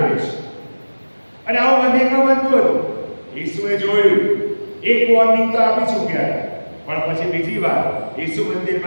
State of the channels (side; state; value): both; inverted; correlation -1.00